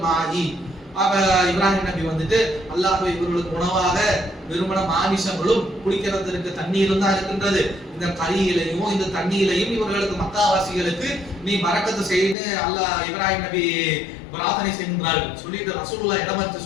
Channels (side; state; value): right; drops out; at 12.4 s